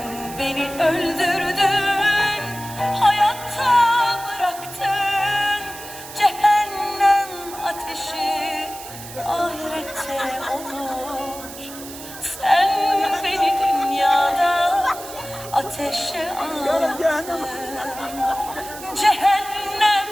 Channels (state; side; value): noise; right; hiss, 14 dB below the sound